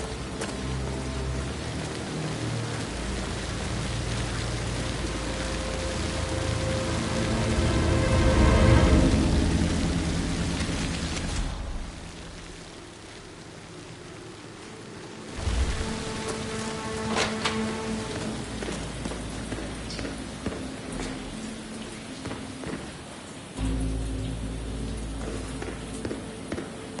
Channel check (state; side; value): identical; both; correlation 1.00